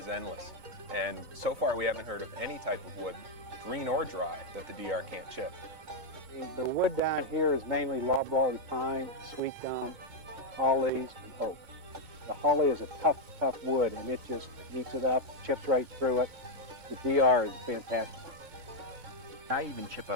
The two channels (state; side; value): late; left; 2.2 ms